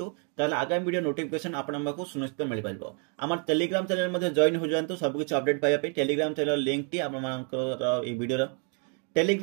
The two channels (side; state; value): left; quieter; 39.9 dB